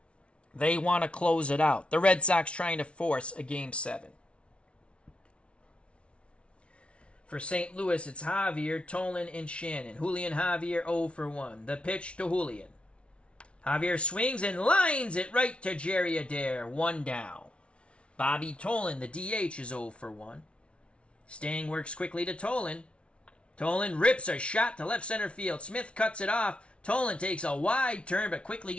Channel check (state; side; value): late; right; 0.060 ms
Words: They want to close it out. The Red Sox trying to force a Game 7. For St. Louis, it's Javier, Tolan, and Shannon. Julian Javier 0 for 1. The pitch to Julian. Javier swings and lines it right to Jerry Adair. 1 down. Bobby Tolan, the DH, is 0 for 1. Stang works quickly to Tolan. Tolan rips a shot to left center field. Smith cuts it off. Tolan takes a wide turn but quickly